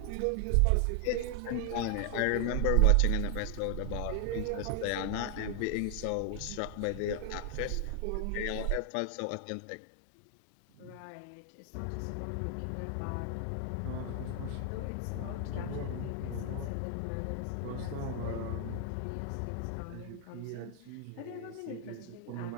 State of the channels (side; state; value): both; different; correlation 0.00